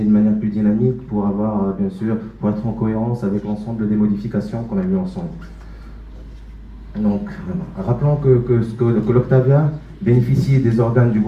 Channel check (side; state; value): both; identical; correlation 1.00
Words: de manière plus dynamique pour avoir, bien sûr, pour être en cohérence avec l'ensemble des modifications qu'on a vues ensemble. Donc, rappelons que l'Octavia bénéficie des organes du